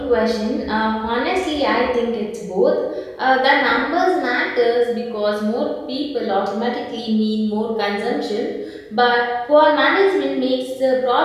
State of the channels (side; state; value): both; identical; correlation 1.00